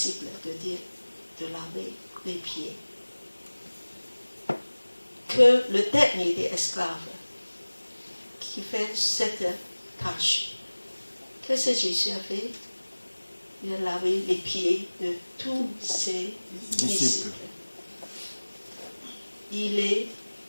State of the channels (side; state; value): both; inverted; correlation -1.00